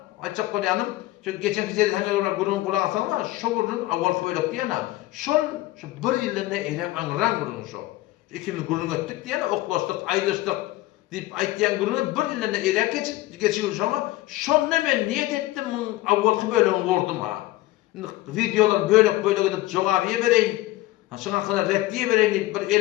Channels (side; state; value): right; quieter; 17.4 dB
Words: açık koyanım. Çünkü geçen kişileri hangi olarak gururun kulağı asanlar, şu gururun avvalki böyle diyene, şu 1 yılında eylem anıran gururun şu. İkimiz gururun ettik diyene, oklaştık, ayrıştık. Dip aýtýan gurunu 1 ýylda erek geçiyor şoma. Şonda men niyet etdim, awvalky bölümi wurdum ha. Videolar böyle gidip jogabyýa bereýin. Şoňa kadar reddiýe bereýin diýip bir